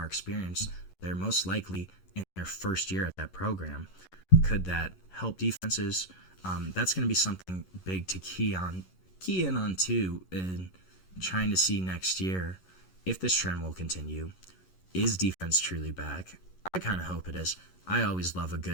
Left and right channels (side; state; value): right; late; 11 ms